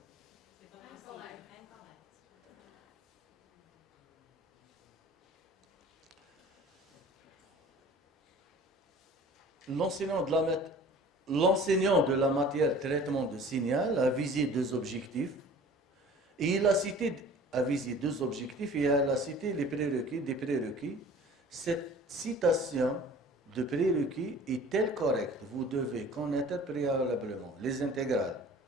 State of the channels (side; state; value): both; normal; correlation 0.46